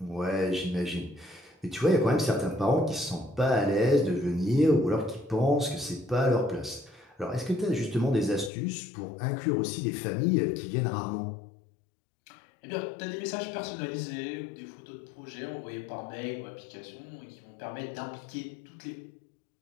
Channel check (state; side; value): drops out; right; at 8.5 s